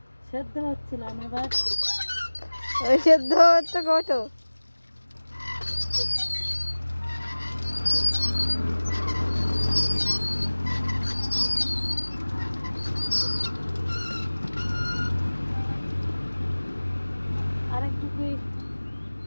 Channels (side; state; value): both; inverted; correlation -1.00